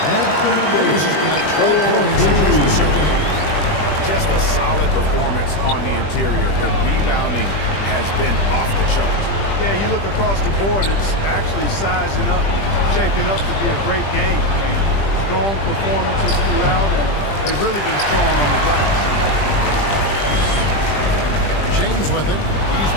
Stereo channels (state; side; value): late; right; 20 ms